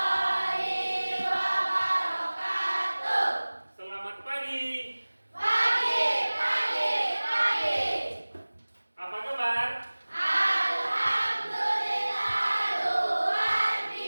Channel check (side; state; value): both; inverted; correlation -1.00